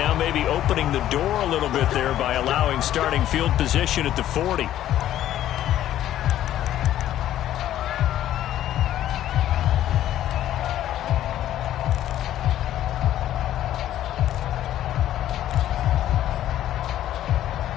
maybe opening the door a little bit there by allowing starting field position at the 40.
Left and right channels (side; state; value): right; quieter; 12.4 dB